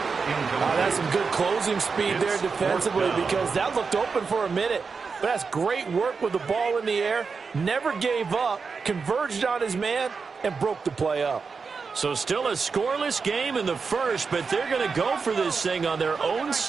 That's some good closing speed there defensively, because that looked open for a minute. But that's great work with the ball in the air. Never gave up, converged on his man, and broke the play up. So still a scoreless game in the first, but they're going to go for this thing on their own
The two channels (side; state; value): left; quieter; 5.1 dB